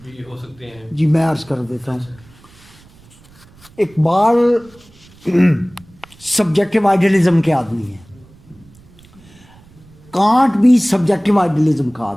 بھی ہو سکتے ہیں. جی میں عرض کر دیتا ہوں. اچھا. اقبال سبجیکٹو آئیڈیلزم کے آدمی ہیں. کانٹ بھی سبجیکٹو آئیڈیلزم کا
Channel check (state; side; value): noise; right; rumble, 26 dB below the sound